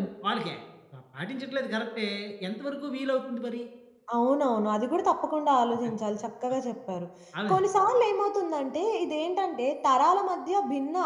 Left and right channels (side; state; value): both; identical; correlation 1.00